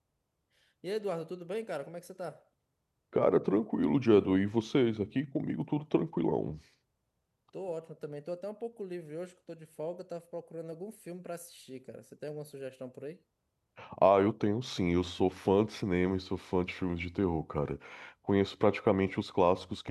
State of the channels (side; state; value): both; identical; correlation 1.00